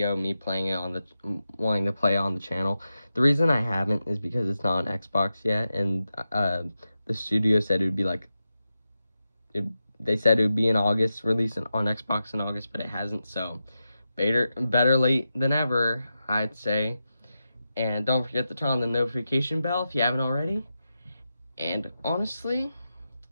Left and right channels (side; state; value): both; inverted; correlation -0.90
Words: me playing it on wanting to play on the channel, the reason I haven't is because it's not on Xbox yet, and the studio said it would be like they said it would be in August, released on Xbox in August, but it hasn't, so better late than ever, I'd say. And don't forget to turn on the notification bell if you haven't already. And honestly,